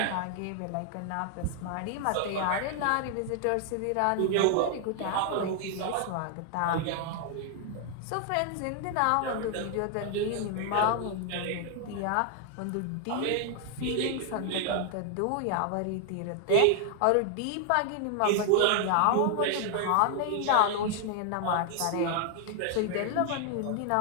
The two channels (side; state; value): both; different; correlation 0.00